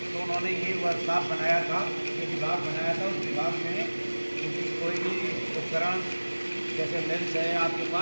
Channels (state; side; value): inverted; both; correlation -1.00